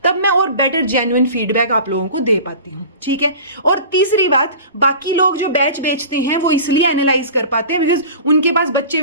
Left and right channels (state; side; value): inverted; both; correlation -0.38